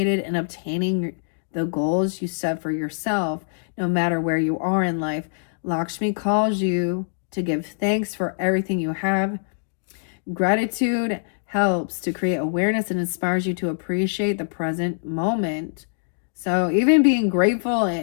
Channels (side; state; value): right; silent; digital silence